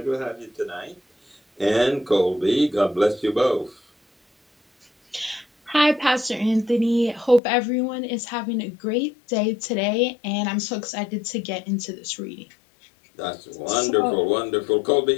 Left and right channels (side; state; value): right; drops out; at 7.4 s